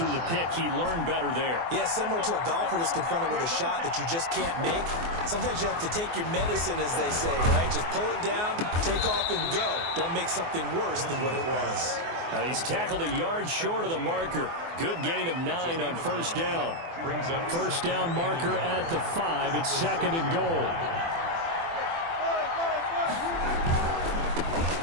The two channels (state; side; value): late; left; 24 ms